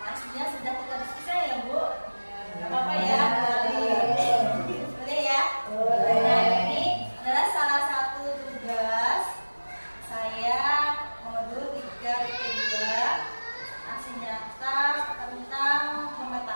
Maksudnya sudah kita diskusi ya Bu. Gak apa-apa ya. Boleh ya. Nah ini adalah salah satu tugas saya modul 3.2 aksi nyata tentang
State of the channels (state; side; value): inverted; both; correlation -1.00